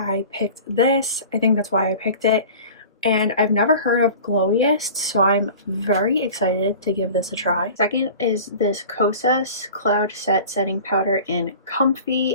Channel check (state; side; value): inverted; both; correlation -0.40